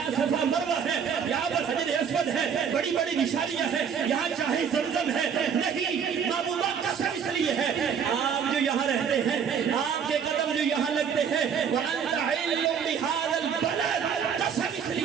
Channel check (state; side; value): quieter; left; 7.2 dB